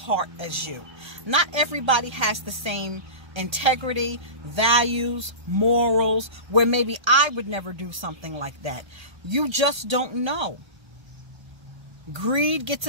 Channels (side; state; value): left; late; 1.2 ms